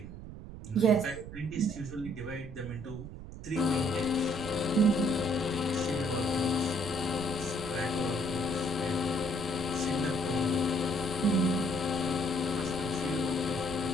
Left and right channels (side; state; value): right; noise; rumble, 12 dB below the sound